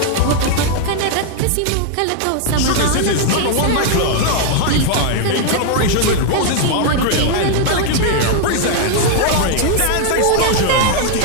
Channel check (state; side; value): different; both; correlation 0.00